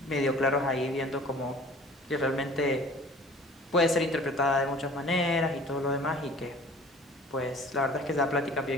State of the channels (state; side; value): normal; both; correlation 0.47